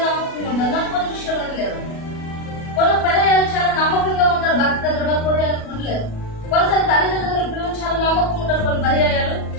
నమ్మకంగా కొన్ని విషయాలు లేరు. కొన్ని పర్యాలు చాలా నమ్మకంగా ఉంటారు. భర్త దగ్గర ఉండలేరు. కొన్నిసారి తల్లిదండ్రుల పిల్లలు చాలా నమ్మకం ఉంటారు. కొన్ని పర్యాయాలు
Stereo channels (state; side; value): late; right; 37 ms